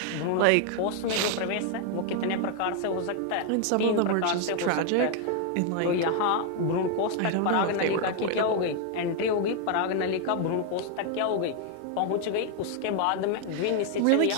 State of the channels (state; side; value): different; both; correlation 0.01